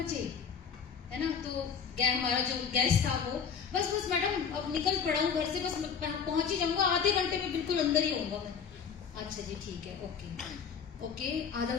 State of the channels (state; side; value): quieter; right; 6.7 dB